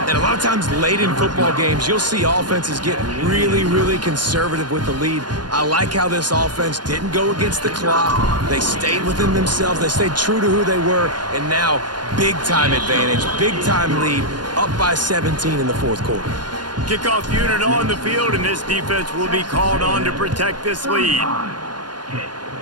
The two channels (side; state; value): left; late; 0.70 ms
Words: And a lot of times late in football games, you'll see offenses get really, really conservative with the lead. I like how this offense didn't go against the clock. They stayed within themselves. They stayed true to who they were. And now, big-time advantage, big-time lead, up by 17 in the 4th quarter. Kickoff unit on the field, and this defense will be called on to protect this lead.